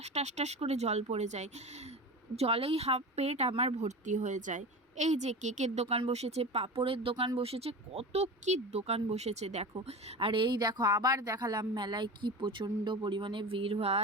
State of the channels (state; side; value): normal; both; correlation 0.29